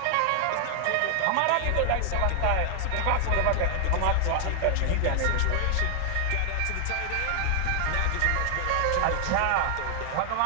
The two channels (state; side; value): different; both; correlation 0.00